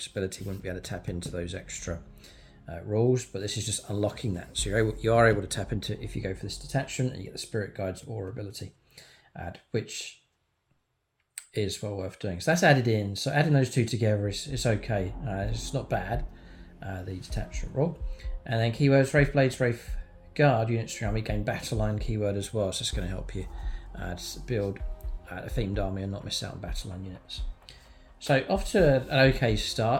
ability, wouldn't be able to tap into those extra rules, but this is just unlocking that. So you are able to tap into if you go for this detachment, and you get the Spirit Guides Aura ability, which is well worth doing. So that's added in. So adding those two together is okay. It's not bad, the detachment rule. And then keywords, Wraith Blades, Wraith Guard units from your army gain battle line keyword as well, so it's going to help you build a themed army and not miss out on battle line units. So off to an okay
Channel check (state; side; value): identical; both; correlation 1.00